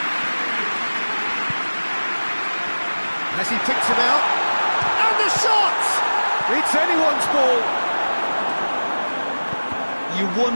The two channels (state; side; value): inverted; both; correlation -1.00